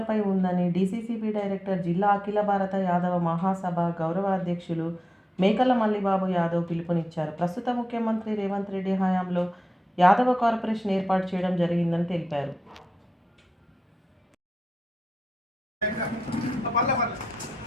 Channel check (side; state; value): both; normal; correlation 0.91